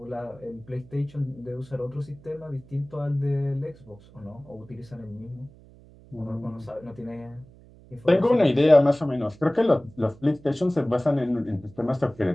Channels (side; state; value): right; noise; hum, 23 dB below the sound